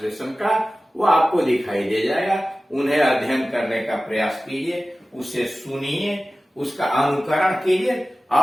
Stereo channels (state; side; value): normal; both; correlation 0.96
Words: का, वो आपको दिखाई दे जाएगा। उन्हें अध्ययन करने का प्रयास कीजिए, उसे सुनिए, उसका अनुकरण कीजिए